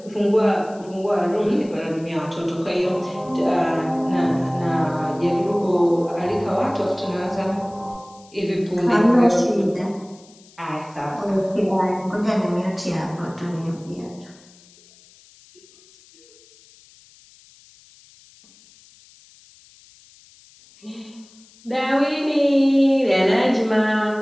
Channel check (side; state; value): left; noise; hiss, 26 dB below the sound